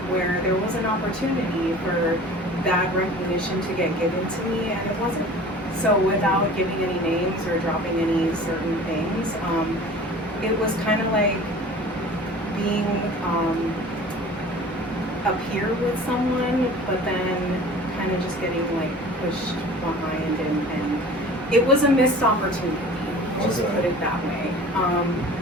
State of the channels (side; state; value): both; normal; correlation 0.43